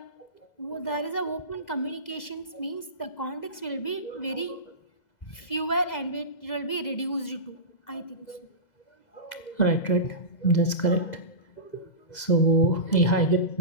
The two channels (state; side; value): late; right; 2.0 ms